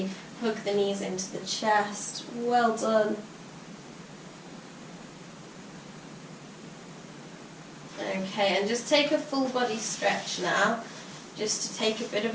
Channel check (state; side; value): identical; both; correlation 1.00